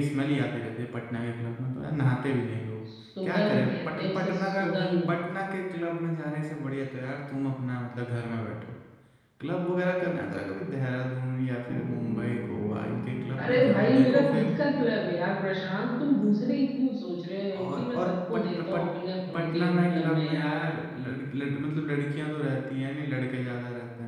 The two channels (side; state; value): both; identical; correlation 1.00